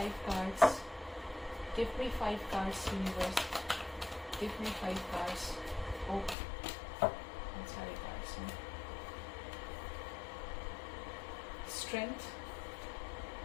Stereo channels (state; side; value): drops out; right; at 6.4 s